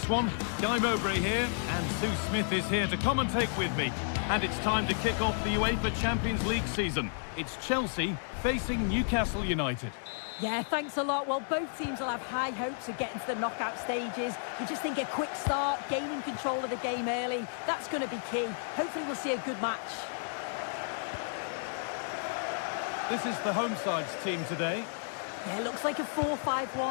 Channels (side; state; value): right; silent; digital silence